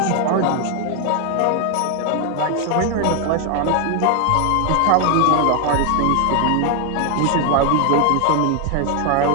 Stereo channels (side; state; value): both; different; correlation 0.01